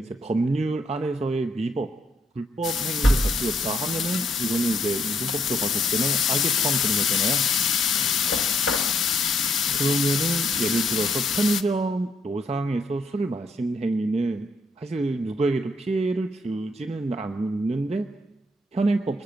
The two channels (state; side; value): normal; both; correlation 0.73